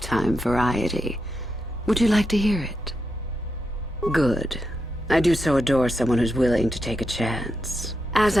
variety. Would you like to hear it? Good. I do so adore someone who's willing to take a chance. As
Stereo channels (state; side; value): normal; both; correlation 0.85